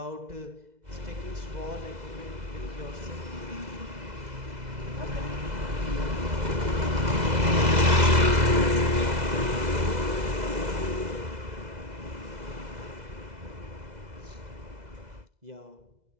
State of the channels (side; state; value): left; late; 2.0 ms